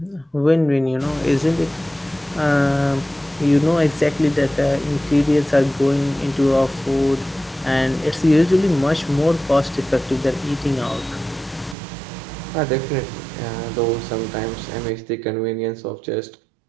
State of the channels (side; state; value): left; drops out; at 11.8 s